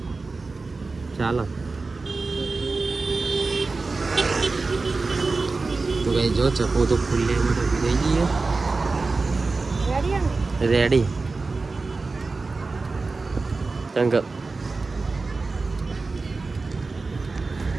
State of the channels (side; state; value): left; quieter; 3.9 dB